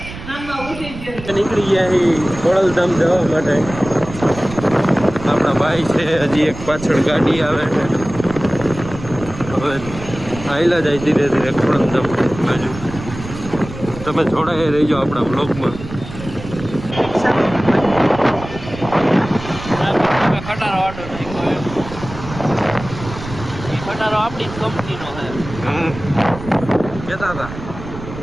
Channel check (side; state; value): right; noise; rumble, 12 dB below the sound